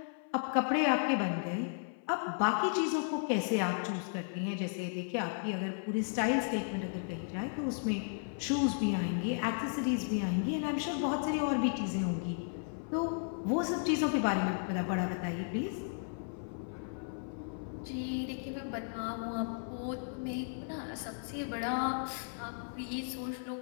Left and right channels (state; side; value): silent; right; 55 dB below the other